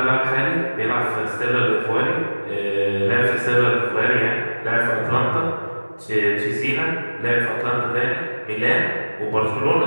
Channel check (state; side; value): inverted; both; correlation -1.00